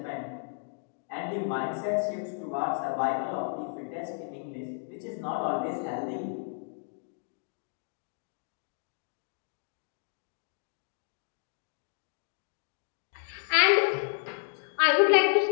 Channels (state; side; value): silent; right; digital silence